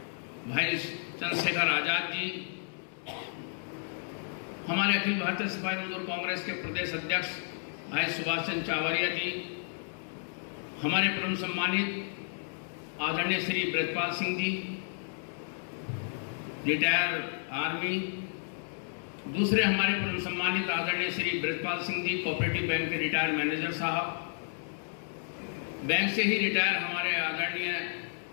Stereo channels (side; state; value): right; silent; digital silence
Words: भाई चंद्रशेखर आजाद जी, हमारे अखिल भारतीय सफाई मजदूर कांग्रेस के प्रदेश अध्यक्ष भाई सुभाष चंद्र चावरिया जी, हमारे परम सम्मानित आदरणीय श्री ब्रजपाल सिंह जी, रिटायर आर्मी, दूसरे हमारे परम सम्मानित आदरणीय श्री ब्रजपाल सिंह जी, कोऑपरेटिव बैंक के रिटायर मैनेजर साहब, बैंक से ही रिटायर हमारे आदरणीय